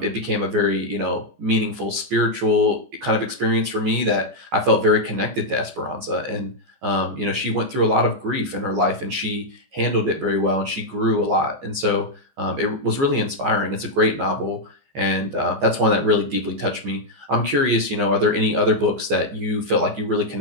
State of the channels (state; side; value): late; left; 14 ms